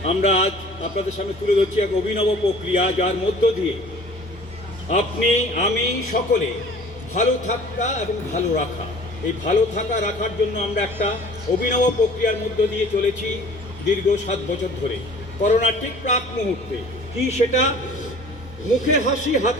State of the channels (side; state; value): both; normal; correlation 0.48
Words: আমরা আজ আপনাদের সামনে তুলে ধরছি এক অভিনব প্রক্রিয়া, যার মধ্য দিয়ে আপনি আমি সকলে ভালো থাকা এবং ভালো রাখা, এই ভালো থাকা রাখার জন্য আমরা একটা অভিনব প্রক্রিয়ার মধ্য দিয়ে চলেছি দীর্ঘ 7 বছর ধরে। করোনার ঠিক প্রাক মুহূর্তে কি সেটা, মুখে হাসি